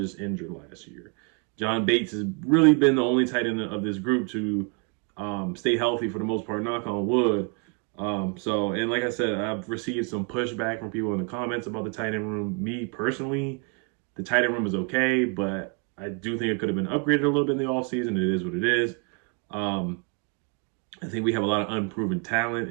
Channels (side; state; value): left; quieter; 35.9 dB